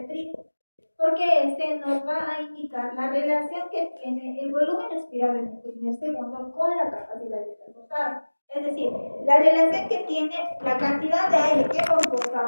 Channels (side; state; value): both; inverted; correlation -1.00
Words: porque este nos va a indicar la relación que tiene el volumen expirado en el primer segundo con la capacidad de transportado. Es decir, la relación que tiene la cantidad de aire que hemos